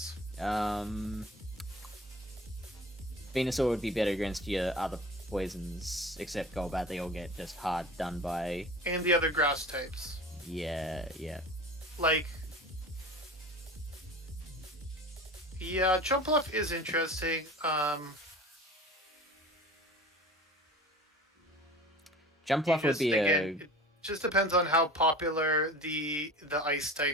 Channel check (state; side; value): normal; both; correlation 0.38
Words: Venusaur would be better against your other poisons, except Golbat. They all get just hard done by. And the other grass types. Yeah. Like. Yeah, Jumpluff is interesting. Jumpluff would be it just depends on how popular the ice